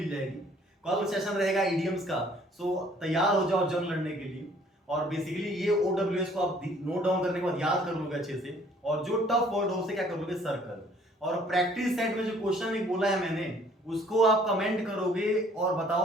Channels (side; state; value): both; normal; correlation 0.59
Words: जाएगी। कल सेशन रहेगा इडियम्स का। सो तैयार हो जाओ जंग लड़ने के लिए। और बेसिकली ये OWS को आप नोट डाउन करने के बाद याद कर लोगे अच्छे से, और जो टफ वर्ड हो उसे क्या कर लोगे? सर्कल। और प्रैक्टिस सेट में जो क्वेश्चन एक बोला है मैंने, उसको आप कमेंट करोगे और